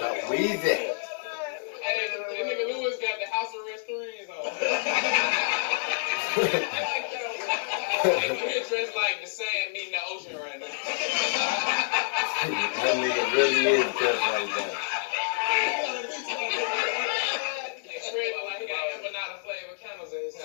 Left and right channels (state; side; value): silent; right; digital silence